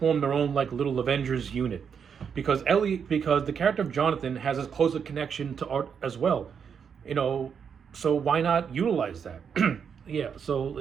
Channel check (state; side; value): quieter; left; 7.0 dB